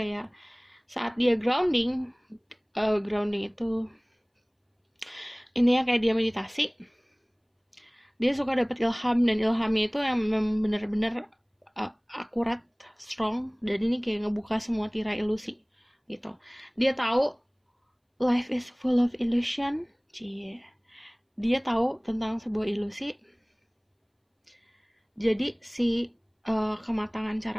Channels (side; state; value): both; identical; correlation 1.00